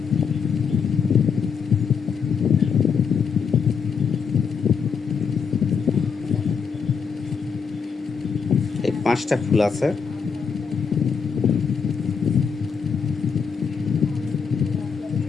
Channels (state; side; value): quieter; right; 6.1 dB